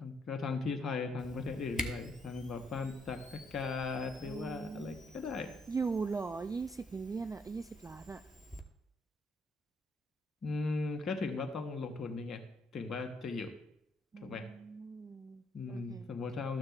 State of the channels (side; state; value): both; normal; correlation 0.72